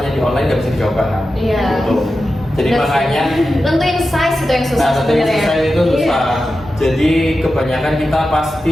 di online nggak bisa dicoba kan. Iya. Gitu. Jadi makanya tentuin size itu yang susah tentuin sebenarnya. size itu susah. Jadi kebanyakan kita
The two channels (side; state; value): both; normal; correlation 0.92